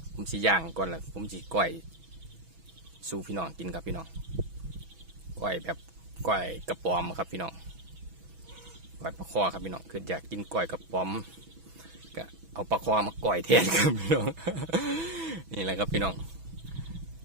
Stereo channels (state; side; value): late; left; 6.1 ms